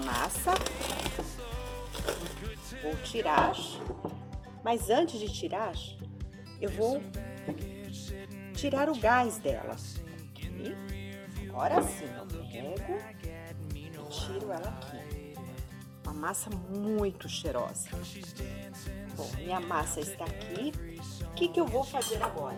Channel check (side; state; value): both; identical; correlation 1.00